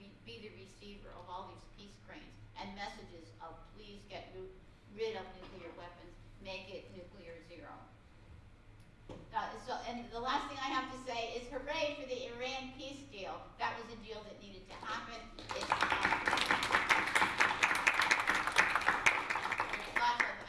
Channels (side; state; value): both; identical; correlation 1.00